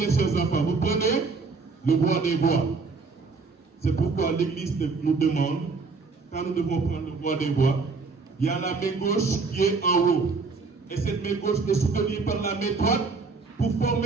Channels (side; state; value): left; quieter; 4.3 dB